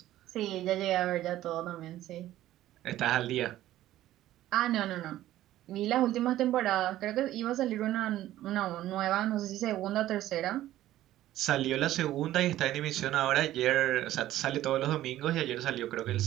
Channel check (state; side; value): quieter; left; 14.0 dB